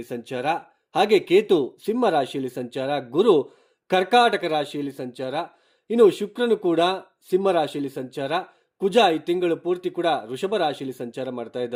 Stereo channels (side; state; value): both; identical; correlation 1.00